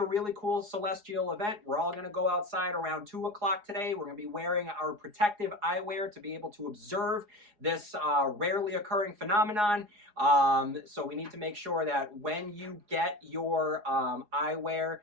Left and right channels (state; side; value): late; left; 4.8 ms